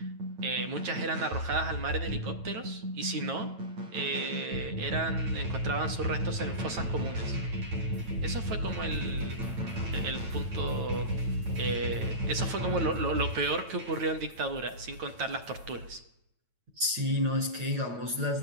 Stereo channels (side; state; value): left; late; 9.0 ms